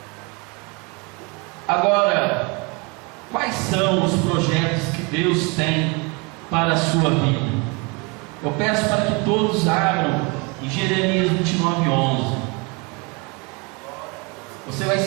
Agora, quais são os projetos que Deus tem para a sua vida? Eu peço para que todos abram em Jeremias 29:11. Você vai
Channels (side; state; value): left; quieter; 29.1 dB